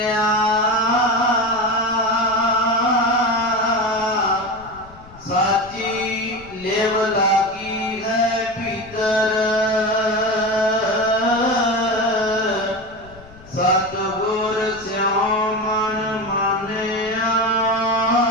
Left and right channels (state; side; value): noise; left; rumble, 22 dB below the sound